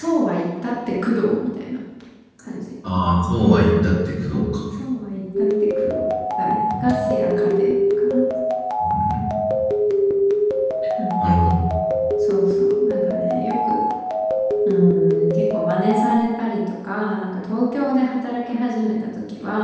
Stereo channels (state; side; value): identical; both; correlation 1.00